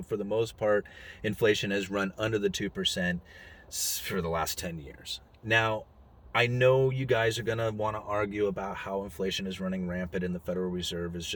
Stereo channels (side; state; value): both; identical; correlation 1.00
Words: for the most part, inflation has run under the 2% for the last 10 years. Now, I know you guys are going to want to argue about how inflation is running rampant and the Federal Reserve is